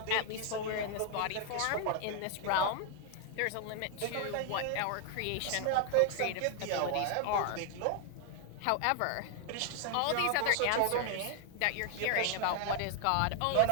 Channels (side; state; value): both; different; correlation 0.00